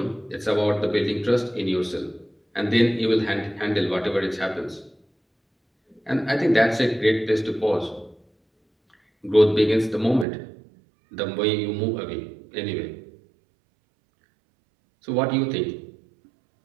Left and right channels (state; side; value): drops out; left; at 10.2 s